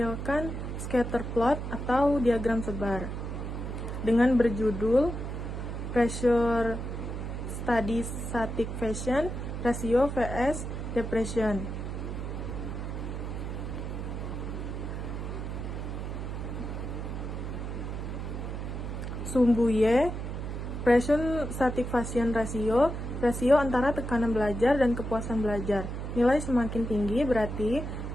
scatter plot atau diagram sebar dengan berjudul Pressure Study Satisfaction Ratio vs Depression. Sumbu Y, Pressure Satisfaction Ratio, rasio antara tekanan belajar dan kepuasan belajar. Nilai semakin tinggi berarti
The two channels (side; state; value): right; noise; hum, 5 dB below the sound